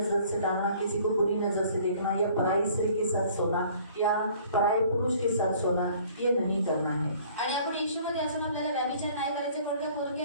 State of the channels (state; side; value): inverted; both; correlation -0.54